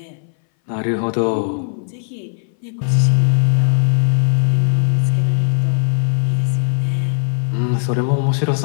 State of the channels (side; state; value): right; silent; 61 dB below the other